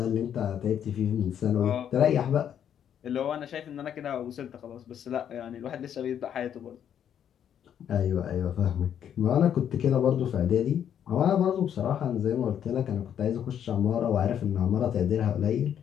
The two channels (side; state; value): right; quieter; 9.3 dB